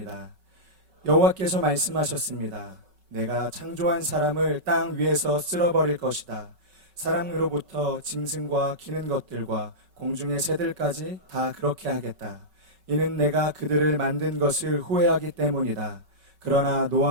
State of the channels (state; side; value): late; left; 5.3 ms